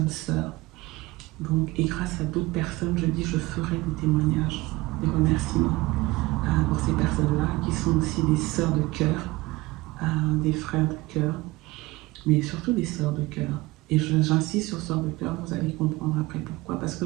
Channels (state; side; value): quieter; left; 20.6 dB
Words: sœurs. Donc, et grâce à d'autres personnes, je dis, je ferai des témoignages, des remerciements pour ces personnes-là, qui sont aussi des sœurs de cœur, des frères de cœur, mais surtout des sœurs de cœur. Et j'insiste sur sœurs de cœur, vous allez comprendre après pourquoi. Parce que